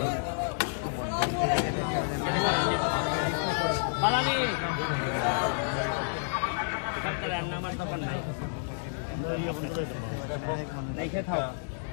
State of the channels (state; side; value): silent; right; 58 dB below the other